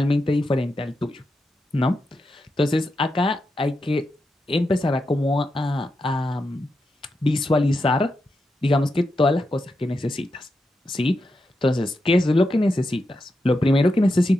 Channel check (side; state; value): both; normal; correlation 0.87